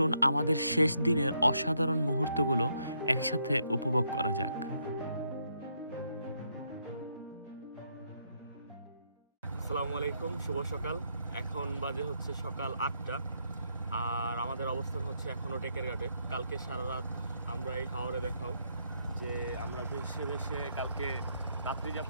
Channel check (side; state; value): both; inverted; correlation -0.76